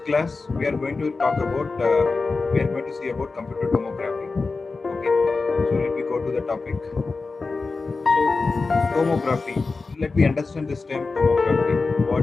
we are going to talk about see about computer tomography. Okay, so let me go to the topic. So tomography. Let me understand this term tomography.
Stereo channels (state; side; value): quieter; right; 4.0 dB